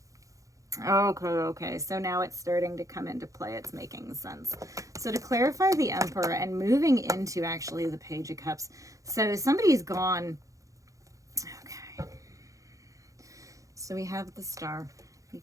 Okay. So now it's starting to come into play. It's making sense. So to clarify the Emperor and moving into actually the Page of Cups. So somebody's gone. Okay. So we have the Star. You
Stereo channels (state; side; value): late; left; 0.16 ms